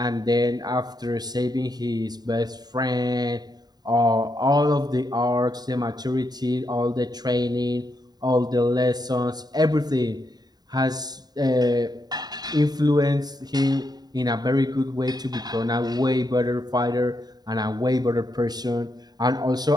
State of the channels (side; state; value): left; late; 0.20 ms